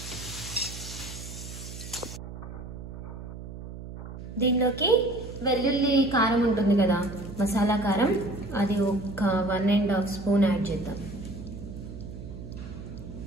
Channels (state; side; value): noise; right; hum, 11 dB below the sound